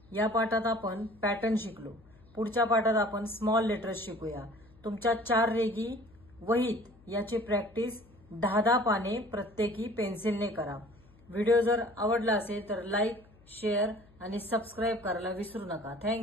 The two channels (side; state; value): left; noise; hum, 27 dB below the sound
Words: या पाठात आपण पॅटर्न शिकलो। पुढच्या पाठात आपण स्मॉल लेटर्स शिकूया। तुमच्या 4 रेघी वहीत याची प्रॅक्टिस 10-10 पाने प्रत्येकी पेन्सिलने करा। व्हिडिओ जर आवडला असेल तर लाईक, शेअर आणि सबस्क्राईब करायला विसरू नका।